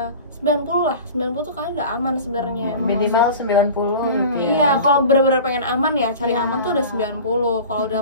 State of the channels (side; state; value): both; inverted; correlation -0.37